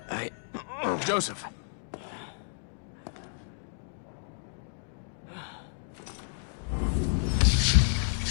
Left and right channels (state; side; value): silent; right; digital silence